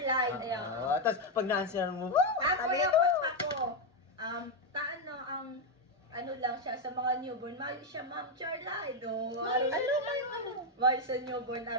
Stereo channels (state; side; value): normal; both; correlation 0.04